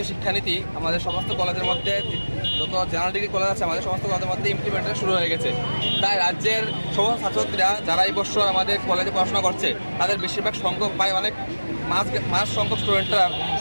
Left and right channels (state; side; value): inverted; both; correlation -1.00